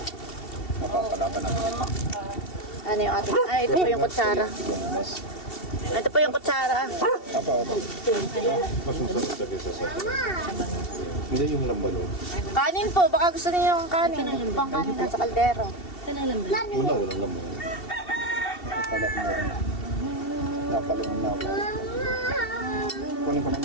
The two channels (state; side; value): late; right; 2.7 ms